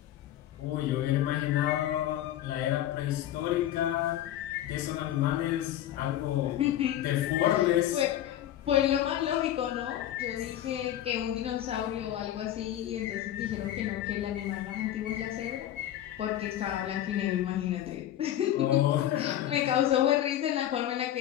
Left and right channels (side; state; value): right; quieter; 12.2 dB